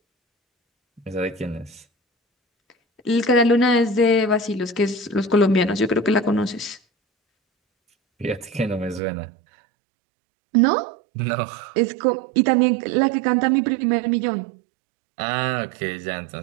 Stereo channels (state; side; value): drops out; left; at 9.0 s